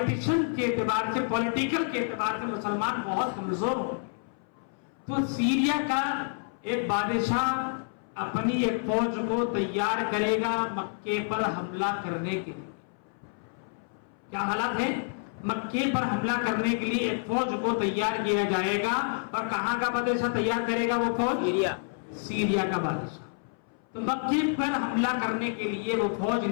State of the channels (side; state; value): right; silent; 59 dB below the other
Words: کے اعتبار سے پولیٹیکل کے اعتبار سے مسلمان بہت کمزور ہوں. تو سیریا کا ایک بادشاہ اپنی ایک فوج کو تیار کرے گا مکے پر حملہ کرنے کے لیے. کیا حالات ہے؟ مکے پر حملہ کرنے کے لیے ایک فوج کو تیار کیا جائے گا. اور کہاں کا بادشاہ تیار کرے گا وہ فوج؟ سیریا. سیریا کا بادشاہ. تو مکے پر حملہ کرنے کے لیے وہ فوج